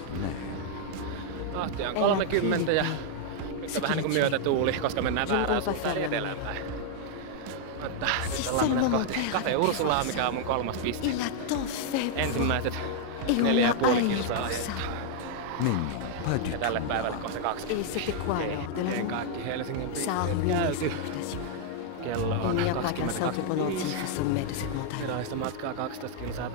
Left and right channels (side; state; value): both; different; correlation 0.00